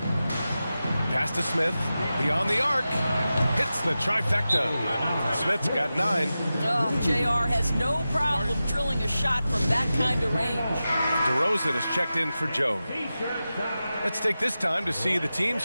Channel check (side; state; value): both; inverted; correlation -0.93